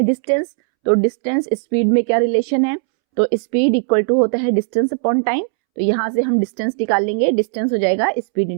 डिस्टेंस। तो डिस्टेंस स्पीड में क्या रिलेशन है, तो स्पीड इक्वल टू होता है डिस्टेंस अपॉन टाइम। तो यहाँ से हम डिस्टेंस निकाल लेंगे। डिस्टेंस हो जाएगा स्पीड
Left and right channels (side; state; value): left; silent; 68 dB below the other